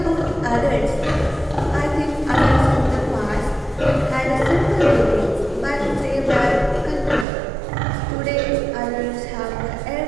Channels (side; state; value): left; drops out; at 7.2 s